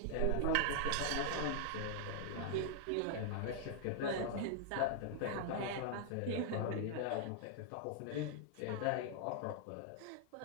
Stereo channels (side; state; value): both; different; correlation -0.01